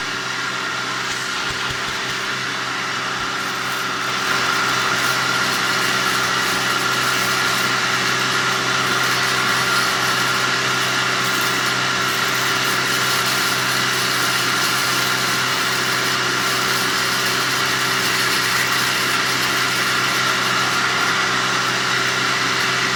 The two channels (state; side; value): identical; both; correlation 1.00